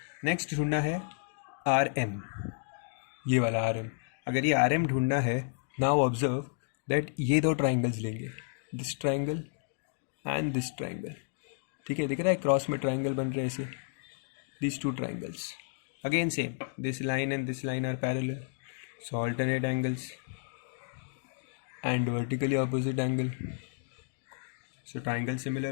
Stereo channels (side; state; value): right; silent; digital silence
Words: next ढूंढना है आर एम, ये वाला आर एम. अगर ये आर एम ढूंढना है, नाउ ऑब्जर्व दैट ये दो ट्राइंगल्स लेंगे, this triangle and this triangle. ठीक है, दिख रहा है क्रॉस में ट्राइंगल बन रहे हैं ऐसे, these two triangles. Again same, this line and this line are parallel, so alternate angles and vertically opposite angle, so triangle